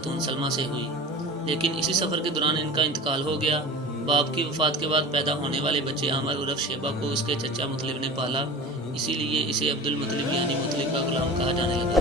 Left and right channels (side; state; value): both; normal; correlation 0.34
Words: سلمہ سے ہوئی، لیکن اسی سفر کے دوران ان کا انتقال ہو گیا۔ باپ کی وفات کے بعد پیدا ہونے والے بچے عامر عرف شیبہ کو اس کے چچا مطلب نے پالا، اسی لیے اسے عبد المطلب یعنی مطلب کا غلام کہا جانے لگا۔